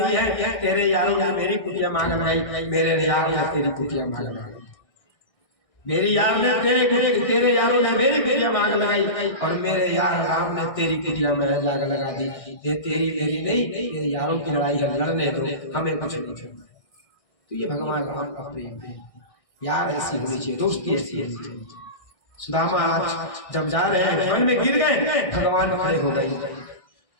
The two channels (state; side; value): late; right; 1.6 ms